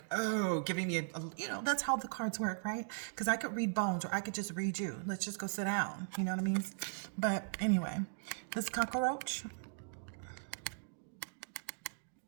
oh, giving me you know, that's how the cards work, right? Because I could read bones or I could just read you. Let's just go sit down. You know what I mean? But anyway, this cockroach,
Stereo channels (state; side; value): silent; left; digital silence